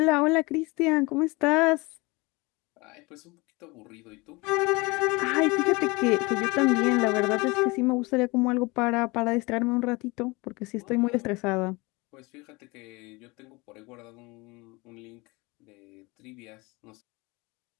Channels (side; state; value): right; quieter; 25.0 dB